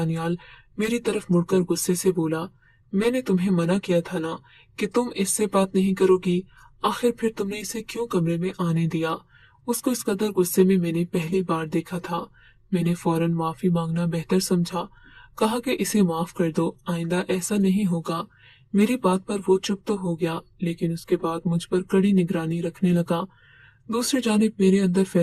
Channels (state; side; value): identical; both; correlation 1.00